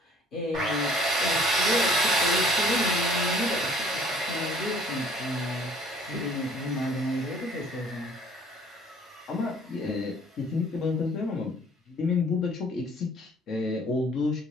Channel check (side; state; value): both; normal; correlation 0.55